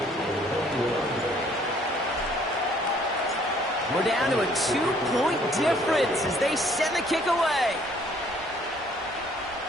We're down to a 2-point difference as they send the kick away.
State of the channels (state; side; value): normal; both; correlation 0.61